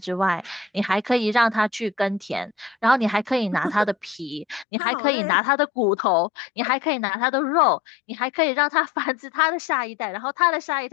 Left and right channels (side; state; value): right; drops out; at 4.7 s